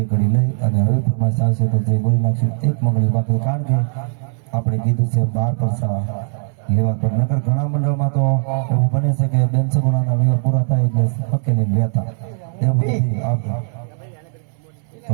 ઘડી લઈ અને હવે ફરમાઈશ આવશે તો જય બોલી નાખશું એક મંગળી બાકી કારણ કે આપણે કીધું છે 12 પરસા લેવા પર નકર ઘણા મંડળમાં તો એવું બને છે કે બેન સગુણાના વિવાહ પૂરા થાય એટલે પકેલી રહેતા એવું નથી આવતું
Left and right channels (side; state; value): left; silent; 64 dB below the other